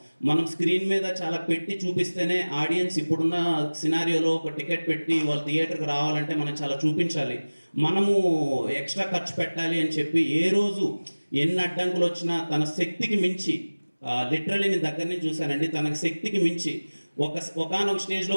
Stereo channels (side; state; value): both; inverted; correlation -1.00